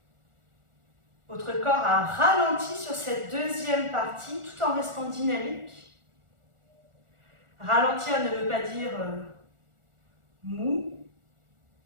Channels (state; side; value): late; left; 1.4 ms